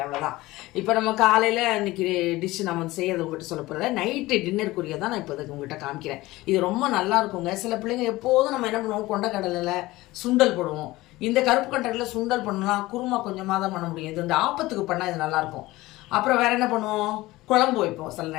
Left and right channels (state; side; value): quieter; right; 18.9 dB